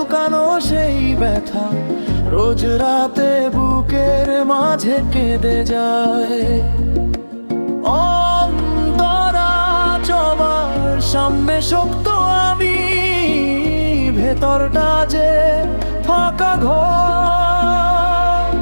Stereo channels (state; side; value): inverted; both; correlation -1.00